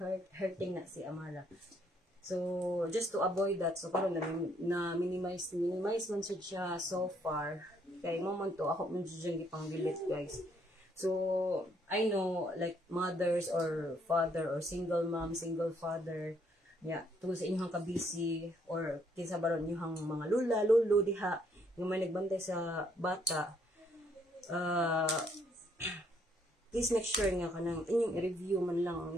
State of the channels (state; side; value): normal; both; correlation 0.69